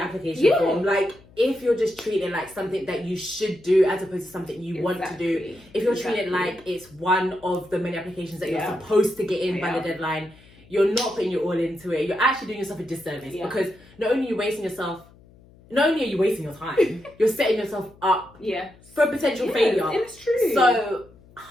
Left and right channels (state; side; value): noise; left; hum, 26 dB below the sound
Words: application form. Like, if you're just treating it like something that you should do as opposed to something you want to do, if you're treating it like it's one of the many applications that you're supposed to get in by the deadline, you're not putting your all into it. You're actually doing yourself a disservice because not only are you wasting your time, you're setting yourself up for potential failure. It's true. So